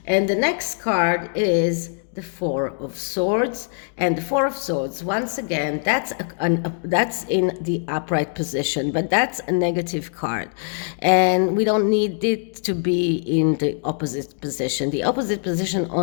And the next card is the Four of Swords. And the Four of Swords, once again, that's in the upright position, but that's a negative card. And we don't need it to be in the opposite position. The opposite position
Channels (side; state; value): right; silent; 64 dB below the other